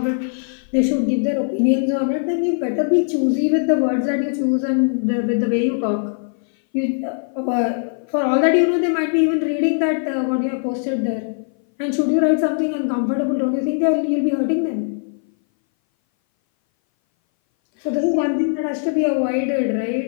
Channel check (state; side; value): silent; right; 60 dB below the other